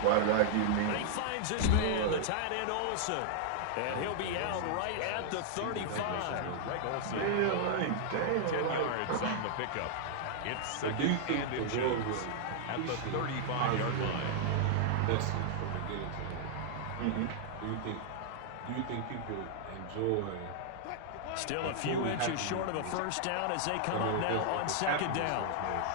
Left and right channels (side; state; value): both; different; correlation -0.01